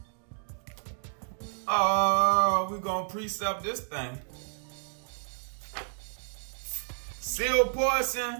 Oh, we're gonna precept this thing. Sealed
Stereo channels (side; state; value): left; silent; digital silence